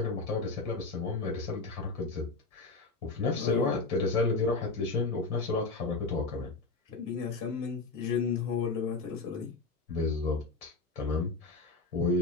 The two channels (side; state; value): right; quieter; 3.7 dB